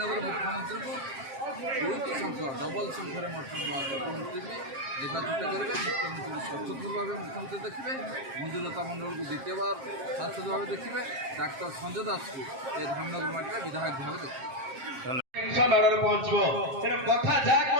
ମୁଖ୍ୟମନ୍ତ୍ରୀଙ୍କୁ 2ଟି ସଂଖ୍ୟା ଡବଲ୍ ସଂଖ୍ୟାରେ ମୁଖ୍ୟମନ୍ତ୍ରୀ ବି ନିର୍ବାଚିତ କରିବେ। ମୁଖ୍ୟମନ୍ତ୍ରୀ ସଚୋଟ ଭାବେ ମୁଖ୍ୟମନ୍ତ୍ରୀ ଦେଖିବେ, ମଞ୍ଜୁଲତା ମଣ୍ଡଳକୁ ଦ୍ୱିତୀୟବାର ସାଂସଦ ଭାବେ ଦେଖିବେ, ଡାକ୍ତର ସଞ୍ଜୟ ଦାସକୁ ଏ ଧାମନଗର ମାଟିରେ ବିଧାୟକ ଭାବେ ଦେଖିବେ। ମାଡ଼ରେ ପହଞ୍ଚିବ ତେଣୁ କଥା ଯାହା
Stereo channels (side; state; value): left; late; 7.5 ms